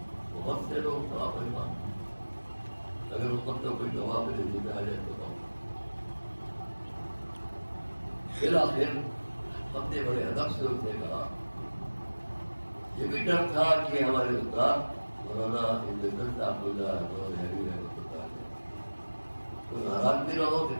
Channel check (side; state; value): both; inverted; correlation -1.00